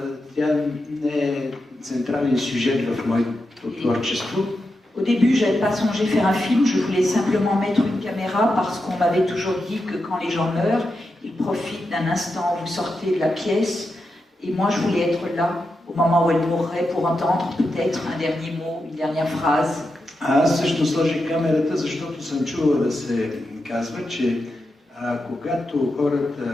тя не е централен сюжет в моето творчество. Au début, je n'avais pas songé faire un film, je voulais simplement mettre une caméra parce qu'on m'avait toujours dit que quand les gens meurent, ils profitent d'un instant où vous sortez de la pièce. Et moi, je voulais être là au moment où elle mourrait pour entendre peut-être un dernier mot, une dernière phrase. Аз също сложих камерата, защото съм чувал да се казва, че когато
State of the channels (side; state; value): both; normal; correlation 0.88